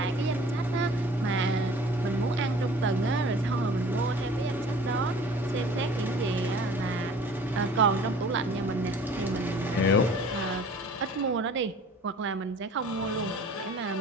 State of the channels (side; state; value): both; normal; correlation 0.47